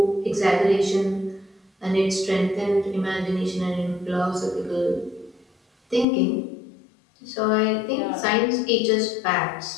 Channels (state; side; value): drops out; right; at 6.1 s